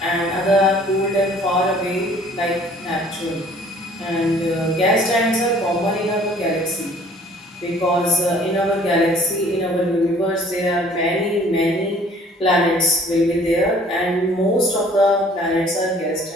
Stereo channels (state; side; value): normal; both; correlation 0.54